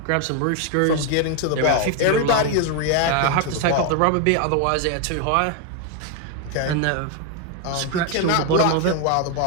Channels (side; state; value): both; different; correlation 0.01